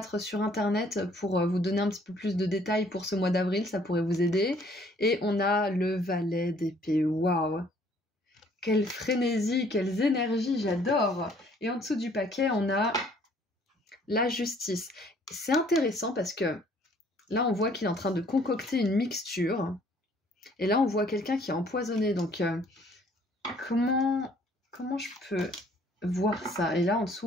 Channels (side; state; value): both; normal; correlation 0.60